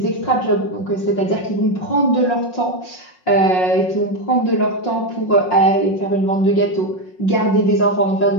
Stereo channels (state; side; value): late; right; 5.5 ms